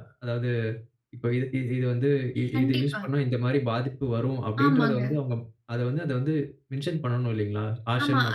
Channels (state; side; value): identical; both; correlation 1.00